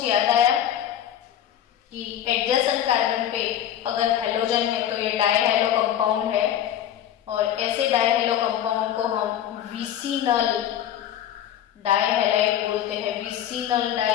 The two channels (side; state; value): right; quieter; 10.7 dB